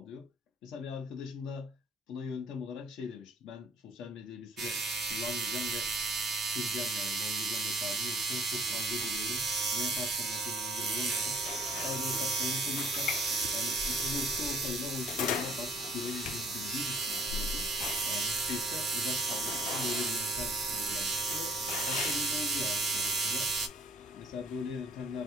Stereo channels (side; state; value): both; normal; correlation 0.59